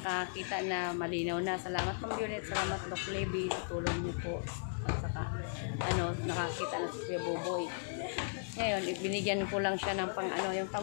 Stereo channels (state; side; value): silent; right; digital silence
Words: na malinaw na. Salamat Ma'am Violet, salamat Doc Levy, sa tulong niyo po. At saka, nakakita na si Kuya Buboy. Ngayon, binigyan ko lang siya ng yung